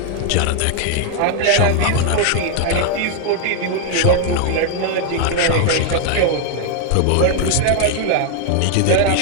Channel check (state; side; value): different; both; correlation 0.00